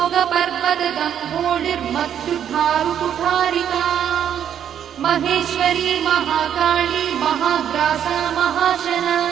रोगपर्वतदम्भोडिर्मत्युद्धारुकुठारिका महेश्वरी महाकाली महाग्रासा महाशना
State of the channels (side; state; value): left; quieter; 9.4 dB